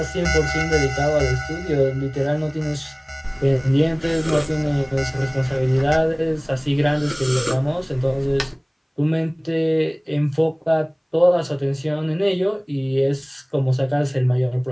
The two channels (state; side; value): identical; both; correlation 1.00